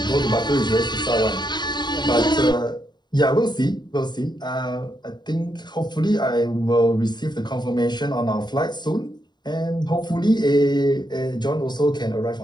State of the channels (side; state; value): right; late; 0.21 ms